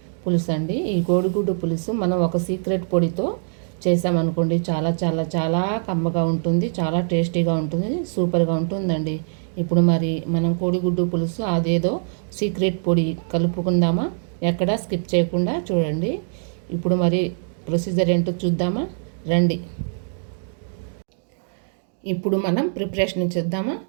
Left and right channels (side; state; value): left; silent; digital silence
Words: పులుసు అండి. ఈ కోడిగుడ్డు పులుసు మనం ఒక సీక్రెట్ పొడితో చేసామనుకోండి, చాలా చాలా చాలా కమ్మగా ఉంటుంది, చాలా టేస్టీగా ఉంటుంది, సూపర్గా ఉంటుందండి. ఇప్పుడు మరి మనం కోడిగుడ్డు పులుసు అదేదో సీక్రెట్ పొడి కలుపుకుందామా? ఎక్కడా స్కిప్ చేయకుండా చూడండి. ఇప్పుడు మరి ప్రొసీజర్ ఏంటో చూద్దామా? రండి. ఇప్పుడు మనం ప్రిపరేషన్ చేద్దామా?